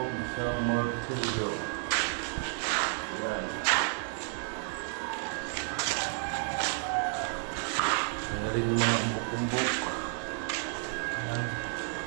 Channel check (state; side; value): silent; left; 57 dB below the other